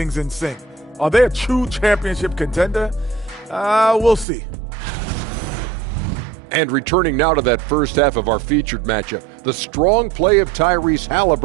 in sync. Are they a true championship contender? We'll see. And returning now to that first half of our featured matchup, the strong play of Tyrese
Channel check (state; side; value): drops out; left; at 4.2 s